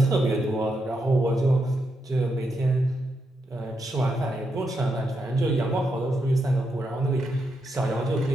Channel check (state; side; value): normal; both; correlation 0.83